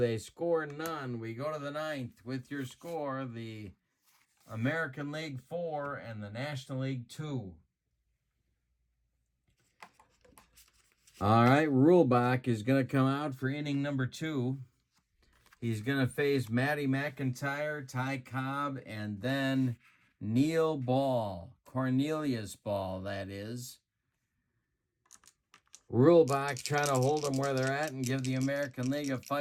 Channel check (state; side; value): identical; both; correlation 1.00